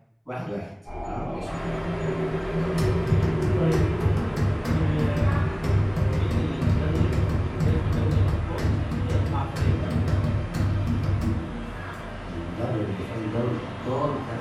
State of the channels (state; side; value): identical; both; correlation 1.00